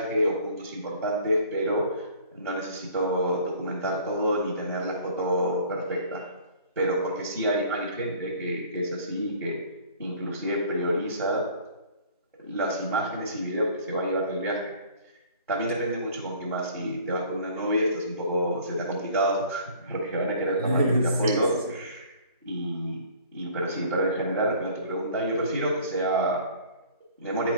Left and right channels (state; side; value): inverted; both; correlation -0.51